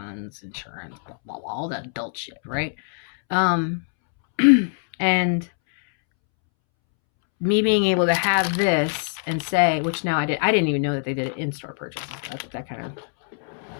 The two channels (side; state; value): right; silent; 63 dB below the other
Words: insurance, blah, blah, blah, all that adult shit, right? And me being able to have this and say, which now I didn't even know that they did it in-store purchases. That kind of